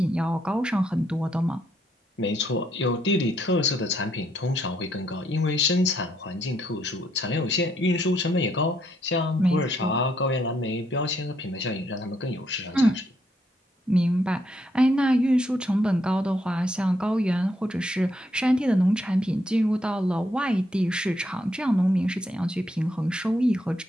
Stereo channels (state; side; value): normal; both; correlation 0.74